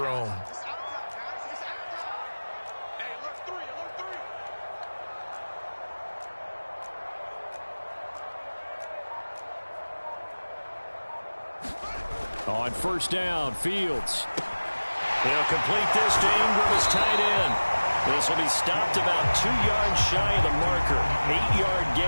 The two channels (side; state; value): both; inverted; correlation -1.00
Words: On first down, Fields. He'll complete this to Ingram as tight end. This will be stopped about 2 yards shy of the marker. 8-yard